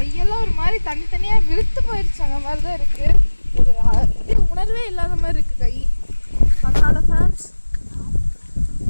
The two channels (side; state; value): both; inverted; correlation -1.00